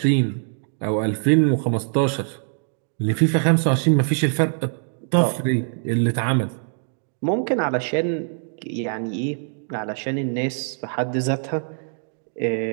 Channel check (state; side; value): silent; left; digital silence